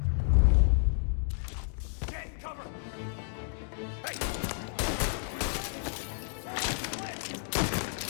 Get in cover! Hey!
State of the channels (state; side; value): silent; right; digital silence